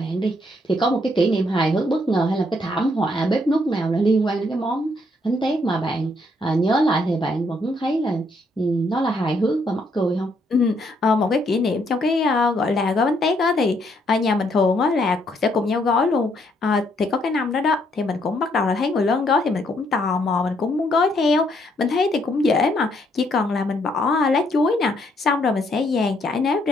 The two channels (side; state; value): both; normal; correlation 0.71